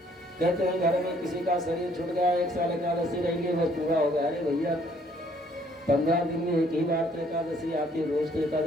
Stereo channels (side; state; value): both; normal; correlation 0.63